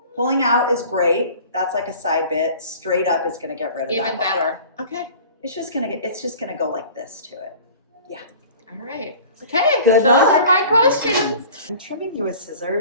Pulling out is great. That's like a side bit. Straight up is going to get rid of that. Even better. Okay. It's just gonna go like this to it. Yeah. All right. Okay. Good Those luck. are my questions. I'm trimming you with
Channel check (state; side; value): inverted; both; correlation -0.43